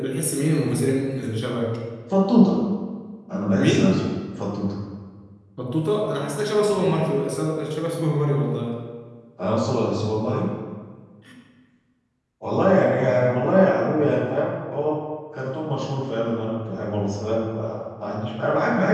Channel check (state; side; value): identical; both; correlation 1.00